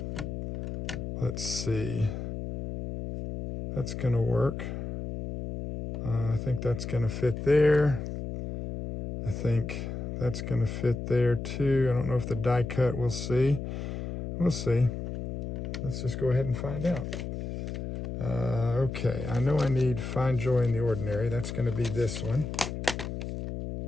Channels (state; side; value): noise; left; hum, 5 dB below the sound